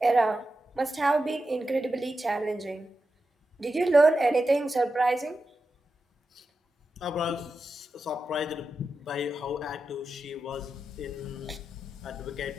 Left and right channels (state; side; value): normal; both; correlation 0.90